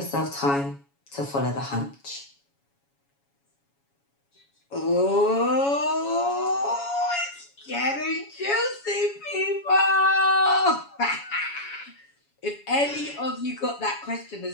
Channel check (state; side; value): late; right; 7.2 ms